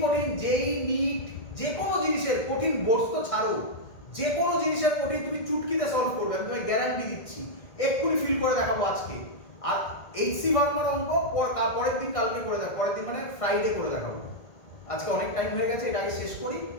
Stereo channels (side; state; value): right; late; 1.6 ms